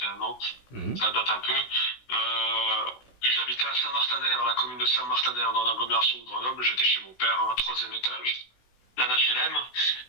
ans, Mhm. ça date un peu. J'habitais à Saint-Martin-d'Air, la commune de Saint-Martin-d'Air, dans l'agglomération de Grenoble, j'étais chez mon père, un troisième étage, d'un HLM.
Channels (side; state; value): right; late; 17 ms